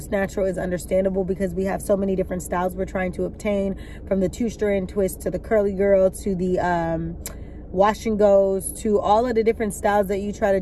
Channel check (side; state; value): both; identical; correlation 1.00